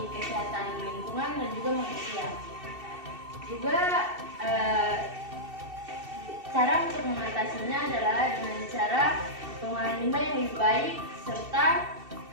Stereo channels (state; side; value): late; left; 2.7 ms